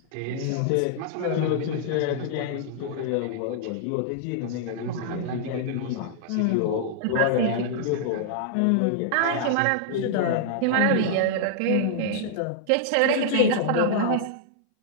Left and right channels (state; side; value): different; both; correlation -0.01